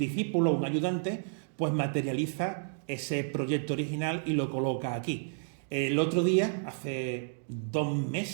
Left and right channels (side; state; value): left; silent; digital silence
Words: un ayudante, pues materializa ese proyecto original y lo coloca aquí. El otro día, hace 2